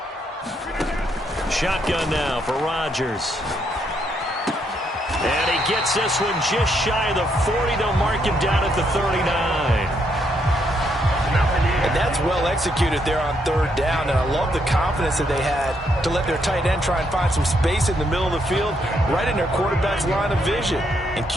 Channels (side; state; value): both; normal; correlation 0.75